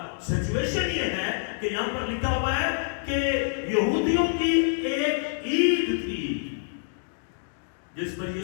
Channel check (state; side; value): silent; right; digital silence